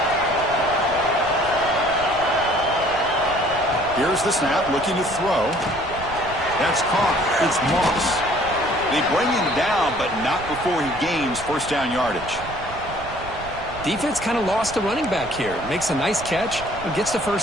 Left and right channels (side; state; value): right; noise; rumble, 14 dB below the sound